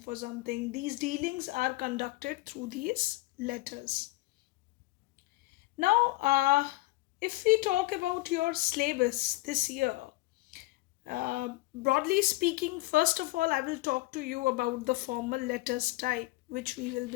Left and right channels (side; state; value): right; quieter; 19.9 dB